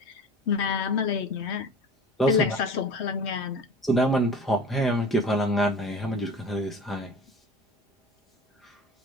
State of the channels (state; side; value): normal; both; correlation 0.37